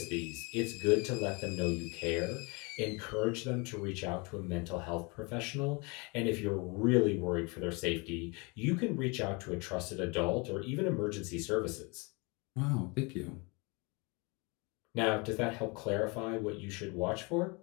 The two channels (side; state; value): right; quieter; 29.4 dB